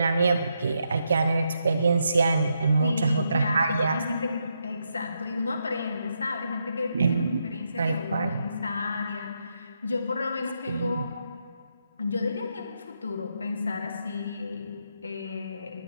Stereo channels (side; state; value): both; inverted; correlation -0.81